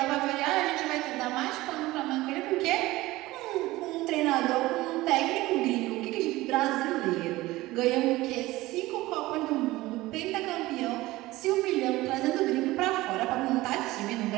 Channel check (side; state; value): left; quieter; 18.6 dB